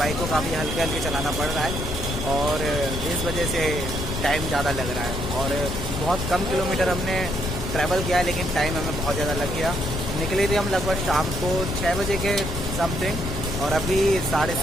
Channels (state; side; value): noise; left; rumble, 5 dB below the sound